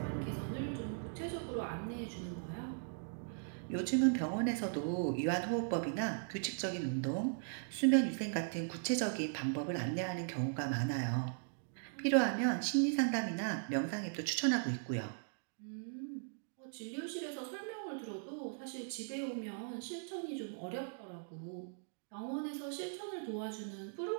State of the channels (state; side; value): silent; left; digital silence